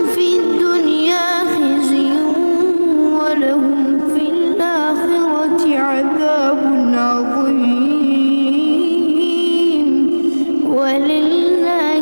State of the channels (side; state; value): both; inverted; correlation -1.00